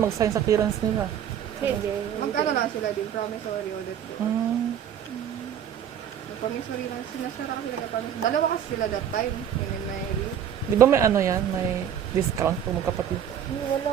mag-sign sa clearance nila? Pwede. Magkano lang sila din, promissory audit. Promissory lang, sinasara kasi nagka-promissory. Dalawa kasi sila that time, yun yung Mary. Di ba may may discount pag magkapatid?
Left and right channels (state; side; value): quieter; left; 9.3 dB